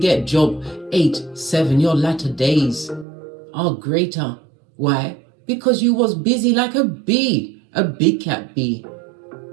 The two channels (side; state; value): left; drops out; at 3.1 s